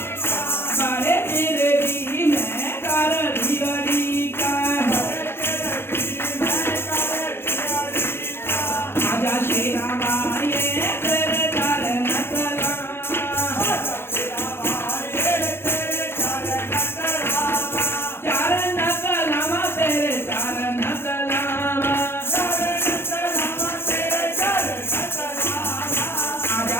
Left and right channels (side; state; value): right; late; 0.11 ms